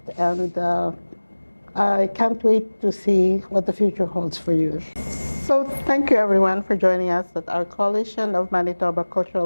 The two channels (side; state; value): both; inverted; correlation -1.00